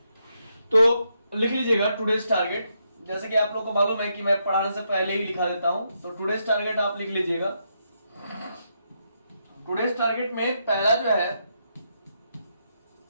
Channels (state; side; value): inverted; both; correlation -0.80